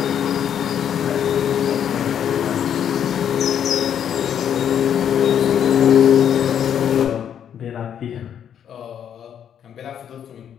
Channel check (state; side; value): quieter; right; 9.0 dB